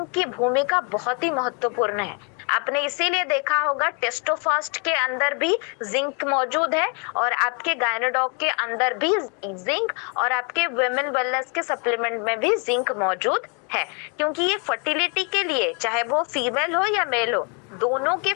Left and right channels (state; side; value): quieter; right; 36.6 dB